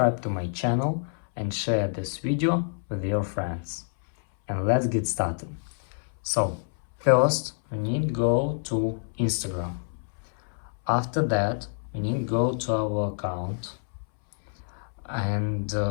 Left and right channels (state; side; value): silent; right; 60 dB below the other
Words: to my channel and share this video with your friends. And let's get started. So first we need to go to Instagram. After that we need to go to our account. And